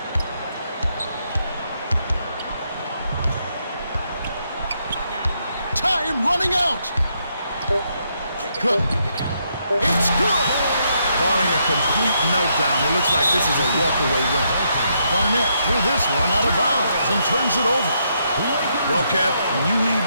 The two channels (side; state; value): both; inverted; correlation -0.77